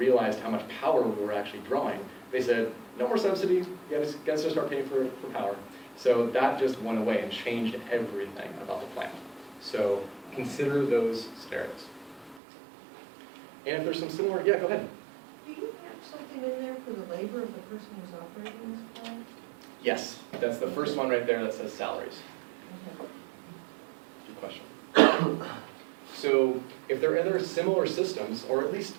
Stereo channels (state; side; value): drops out; left; at 12.4 s